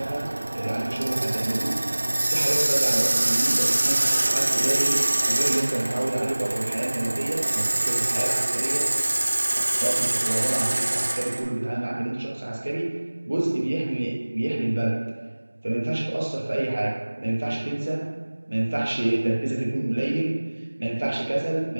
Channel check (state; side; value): inverted; both; correlation -1.00